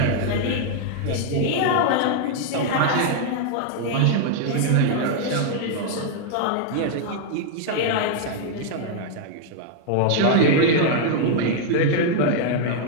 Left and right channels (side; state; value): both; different; correlation 0.00